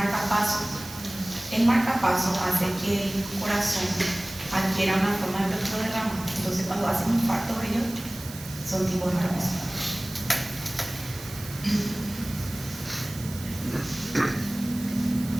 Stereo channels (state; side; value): noise; right; hiss, 14 dB below the sound